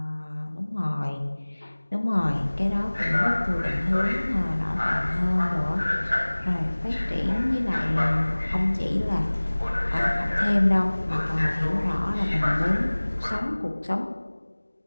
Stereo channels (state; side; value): inverted; both; correlation -1.00